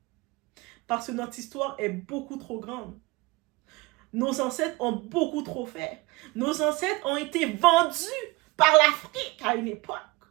Parce que notre histoire est beaucoup trop grande. Nos ancêtres ont beaucoup trop fait. Nos ancêtres ont été vendus par l'Afrique à une époque.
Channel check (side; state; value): left; quieter; 23.0 dB